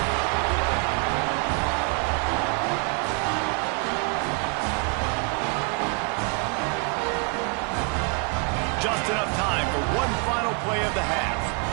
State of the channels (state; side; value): quieter; left; 34.4 dB